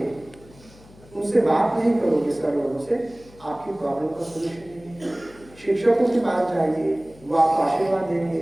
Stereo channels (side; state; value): left; noise; hum, 24 dB below the sound